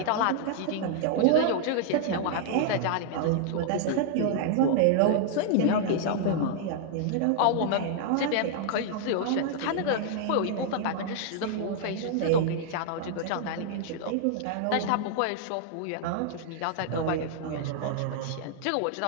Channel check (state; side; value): different; both; correlation -0.01